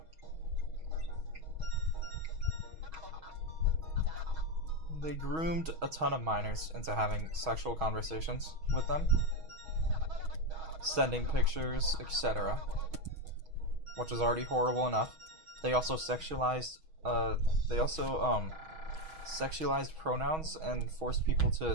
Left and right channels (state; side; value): late; left; 6.3 ms